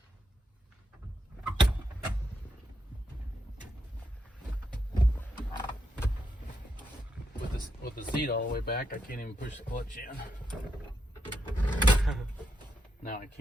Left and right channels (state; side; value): normal; both; correlation 0.82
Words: with the seat all the way back. I can't even push the clutch in. Now I